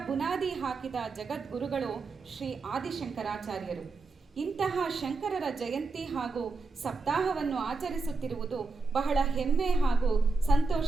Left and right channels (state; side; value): quieter; left; 3.9 dB